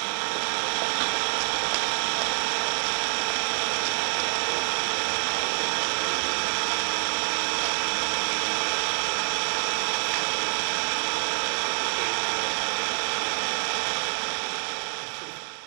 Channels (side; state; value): left; silent; 60 dB below the other